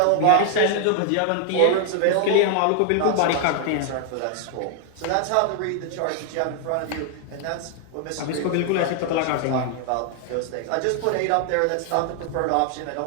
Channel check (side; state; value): both; different; correlation 0.00